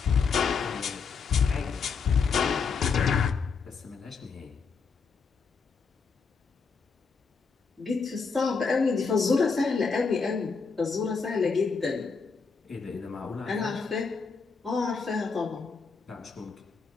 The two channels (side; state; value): right; quieter; 5.1 dB